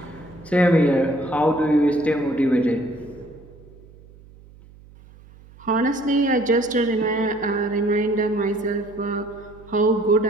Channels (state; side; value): noise; right; hum, 23 dB below the sound